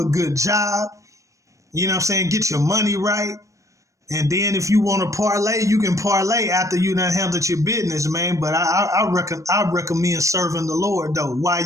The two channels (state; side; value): late; left; 0.15 ms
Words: good job. You know what I'm saying? Get your money right. And then if you want to parlay, you can parlay after you done handled your business, man. But I recommend serving the Lord, though,